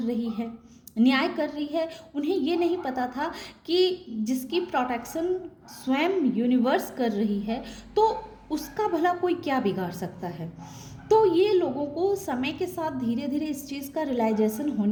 है, न्याय कर रही है। उन्हें ये नहीं पता था कि जिसकी प्रोटेक्शन स्वयं यूनिवर्स कर रही है, तो उसका भला कोई क्या बिगाड़ सकता है। तो ये लोगों को समय के साथ धीरे धीरे इस चीज़ का रियलाइजेशन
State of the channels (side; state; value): both; identical; correlation 1.00